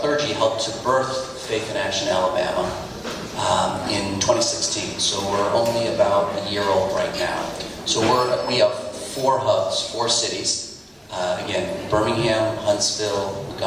helped to birth Faith in Action Alabama in 2016. So we're only about a year old right now. So we have 4 hubs, 4 cities. Again, Birmingham, Huntsville,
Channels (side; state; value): both; identical; correlation 1.00